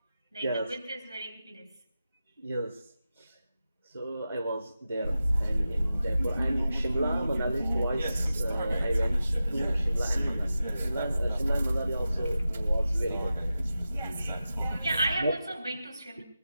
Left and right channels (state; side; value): inverted; both; correlation -0.92